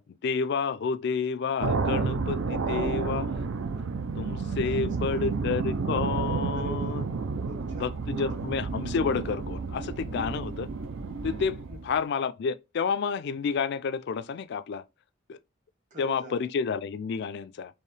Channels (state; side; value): normal; both; correlation 0.13